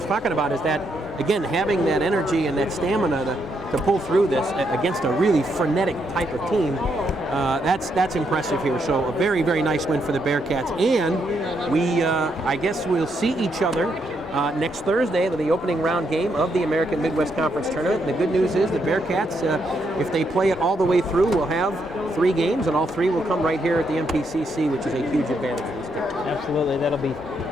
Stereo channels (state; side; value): normal; both; correlation 0.78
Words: talking about, is that, again, having that energy and that stamina to pull through this against a really frenetic type of team, that's impressive here. So a very, very nice win for the Bearcats. And we, I guess we'll see each other next Thursday, the opening round game of the American Midwest Conference Tournament. The good news is the Bearcats, if they play it all the way through, will have 3 games, and all 3 will come right here at the MPCC, which is a huge advantage for this team. Absolutely. That'll be